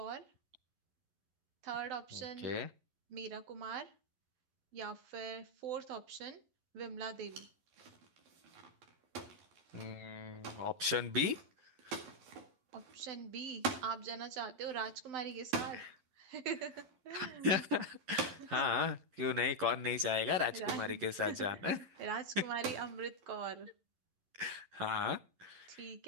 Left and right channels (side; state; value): left; late; 11 ms